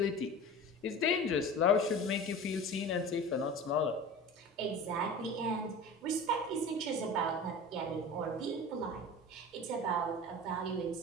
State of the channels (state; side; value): normal; both; correlation 0.35